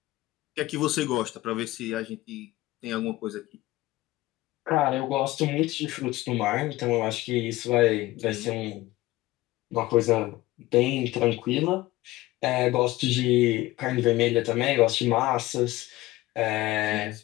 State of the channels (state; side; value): quieter; right; 18.0 dB